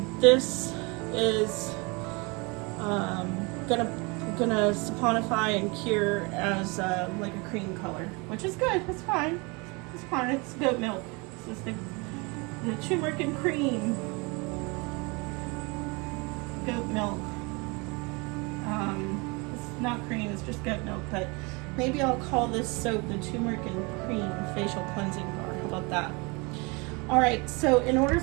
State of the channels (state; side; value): quieter; left; 28.5 dB